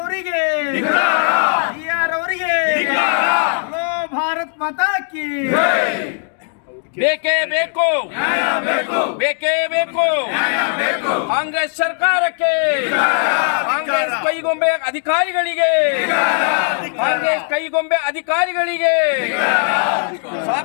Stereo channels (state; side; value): silent; right; 62 dB below the other